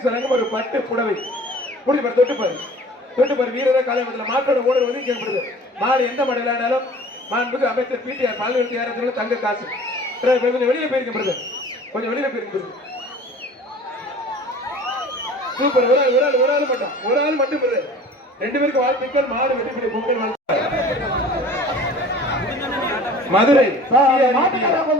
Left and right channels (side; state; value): both; normal; correlation 0.45